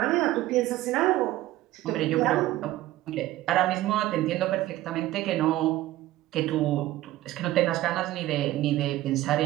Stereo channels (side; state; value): left; quieter; 15.7 dB